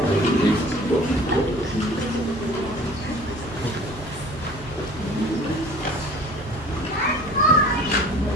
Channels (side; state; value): both; normal; correlation 0.46